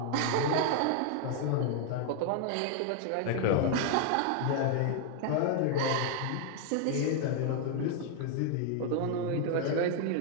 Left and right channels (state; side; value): different; both; correlation 0.00